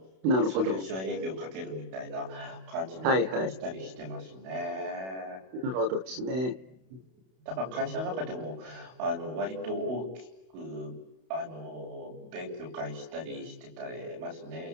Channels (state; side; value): late; left; 32 ms